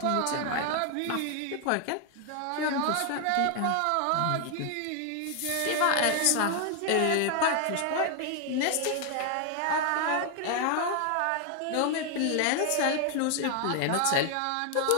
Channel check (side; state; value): both; different; correlation 0.00